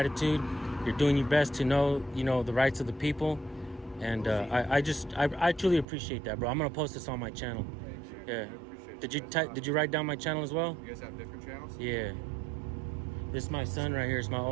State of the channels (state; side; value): drops out; left; at 5.9 s